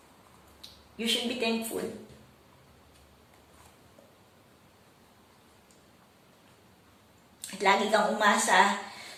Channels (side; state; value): both; identical; correlation 1.00